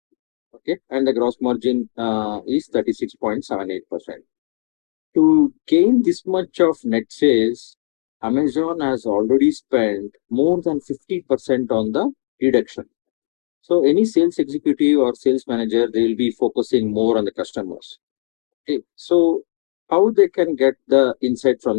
Okay, and the gross margin is 36.78%. To gain this much of net sales, Amazon has already spent more than 50% on the reduction. So any sales executive or sales manager, they will be focusing more on the customers. Okay, so how they can get the insight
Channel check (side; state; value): right; silent; digital silence